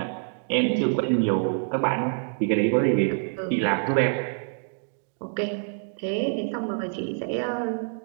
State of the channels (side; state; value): left; silent; 59 dB below the other